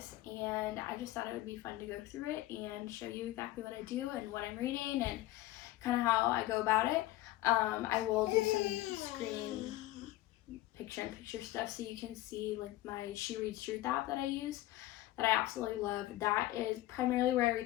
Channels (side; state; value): right; quieter; 16.2 dB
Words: and I just thought it would be fun to go through it and show you exactly what I do and what I'm reading and kind of how I go about it. I will do some screen picture-in-picture stuff so you can see like my She Reads Truth app that I use that I absolutely love. That is primarily where I